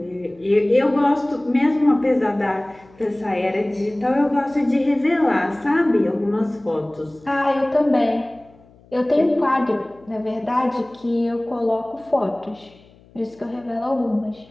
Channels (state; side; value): noise; left; hum, 27 dB below the sound